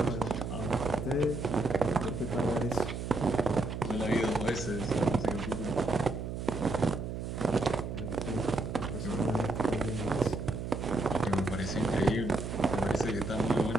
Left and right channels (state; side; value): noise; right; hum, 5 dB below the sound